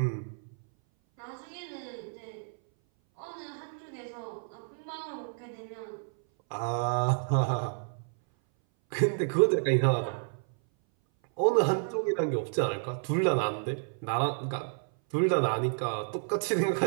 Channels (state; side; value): silent; left; 57 dB below the other